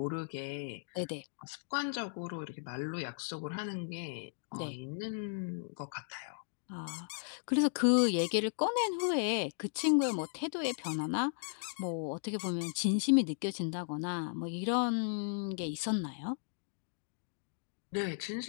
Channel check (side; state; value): right; silent; digital silence